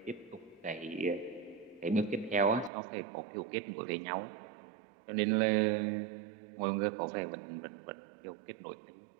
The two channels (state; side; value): drops out; left; at 2.7 s